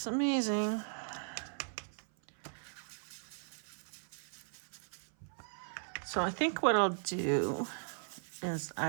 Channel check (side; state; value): left; silent; 53 dB below the other